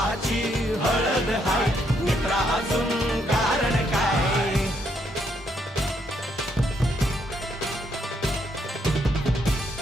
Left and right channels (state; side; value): normal; both; correlation 0.74